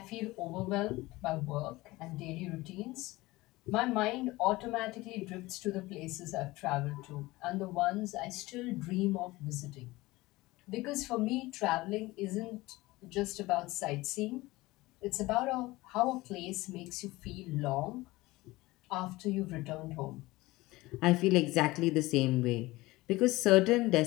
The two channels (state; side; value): quieter; right; 20.0 dB